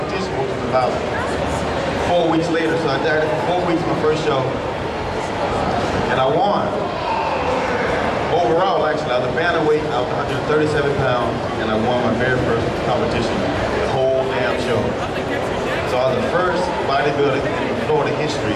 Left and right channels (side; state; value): both; identical; correlation 1.00